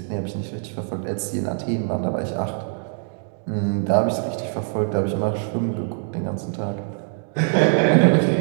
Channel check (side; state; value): left; silent; 59 dB below the other